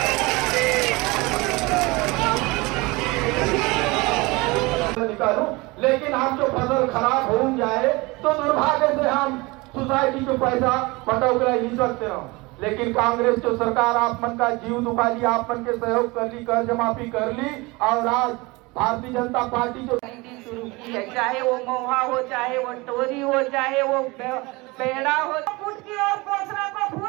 निकालूं, लेकिन हम जो फसल खराब हो जाए तो दुर्भाग्य से हम सोसाइटी को पैसा बटोरा ही सकते हो। लेकिन कांग्रेस जो सरकार आप मन का जीव दुखा ली, आप मन के सहयोग कर ली, कर्ज माफी कर ली, और आज भारतीय जनता पार्टी जो शुरू की है, चाहे वो महुआ हो, चाहे वो टोरी हो, चाहे वो पेड़ा हो, फुट की और कोसरा को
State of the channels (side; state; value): left; quieter; 24.1 dB